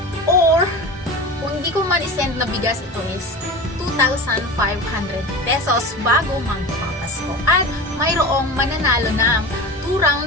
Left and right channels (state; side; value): normal; both; correlation 0.31